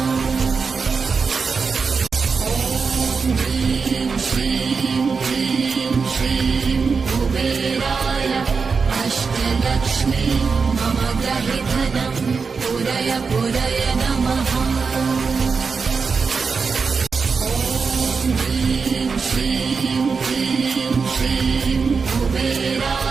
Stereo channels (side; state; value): left; quieter; 5.1 dB